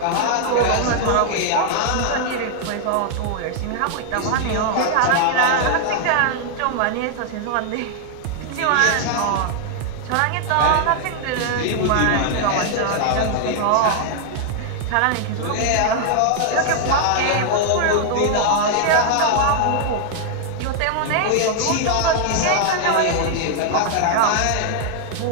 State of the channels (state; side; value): different; both; correlation 0.00